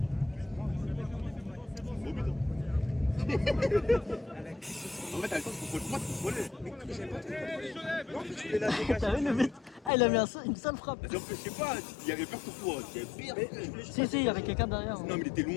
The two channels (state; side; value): drops out; right; at 9.9 s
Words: Au but. En fait, t'as le temps de contrôler. Non, tu fais la dégage. T'as vu le but? Ah, il a mis une seule frappe. Je sais pas, il y avait peur pour toi. Il y avait pire. Si, il y avait quelqu'un derrière. Non, mais il était